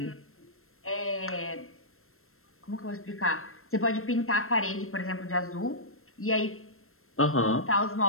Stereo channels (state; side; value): late; right; 0.62 ms